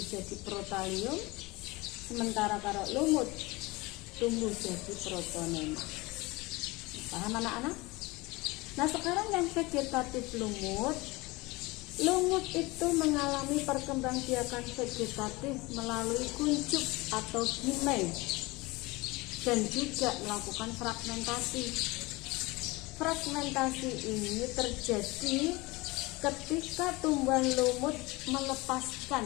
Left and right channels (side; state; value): right; quieter; 22.9 dB